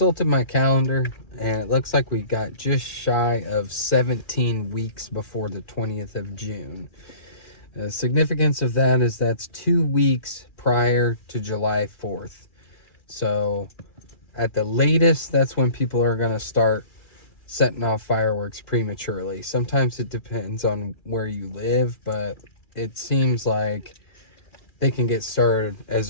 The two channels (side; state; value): right; late; 2.4 ms